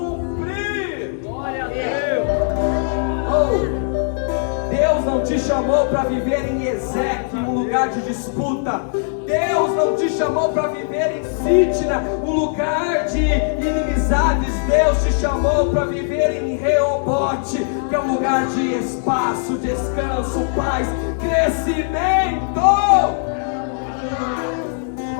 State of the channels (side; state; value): right; silent; 66 dB below the other